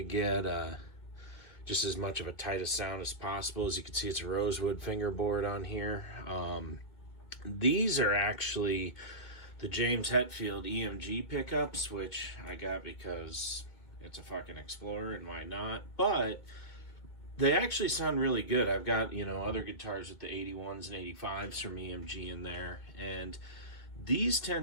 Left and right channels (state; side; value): late; right; 2.2 ms